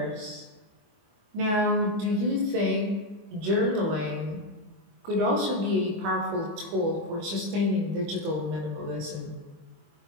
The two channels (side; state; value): left; late; 24 ms